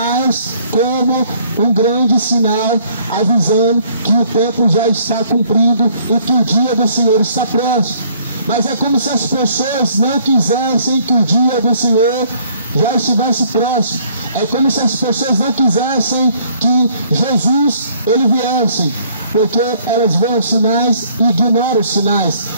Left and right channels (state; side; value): inverted; both; correlation -0.61